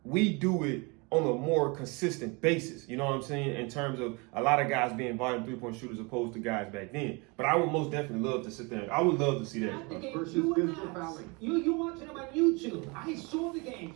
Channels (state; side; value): quieter; left; 28.9 dB